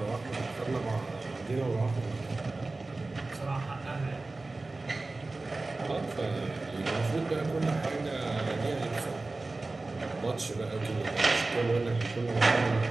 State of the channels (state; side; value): quieter; left; 3.3 dB